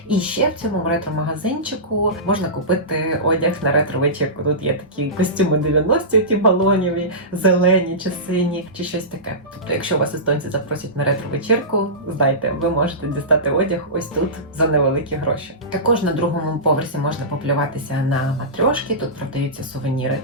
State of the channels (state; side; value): normal; both; correlation -0.19